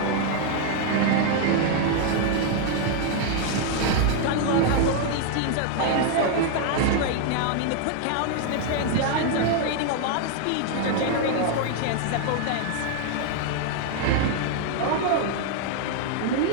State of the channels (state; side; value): different; both; correlation 0.00